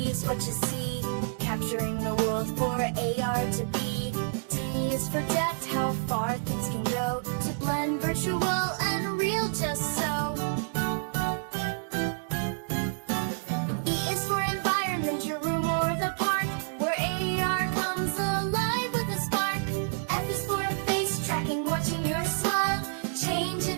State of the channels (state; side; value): silent; left; digital silence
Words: what you see, capturing the world for AR to be. D is for depth, how far things can go, to blend virtual and real just so. E is for environment, your room or the park, where AR comes alive with a spark. F is for face tracking, watching your smile, change